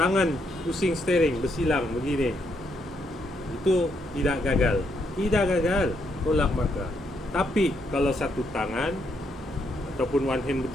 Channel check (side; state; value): both; normal; correlation 0.76